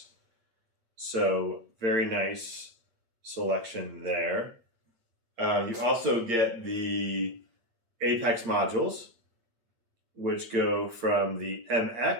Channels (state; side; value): late; left; 8.8 ms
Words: So very nice selection there. You also get the Apex modules, which go from the